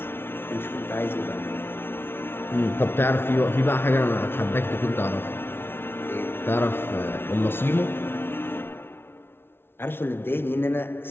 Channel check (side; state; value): right; late; 0.11 ms